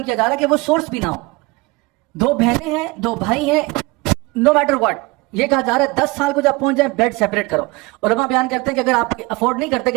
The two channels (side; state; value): left; quieter; 23.7 dB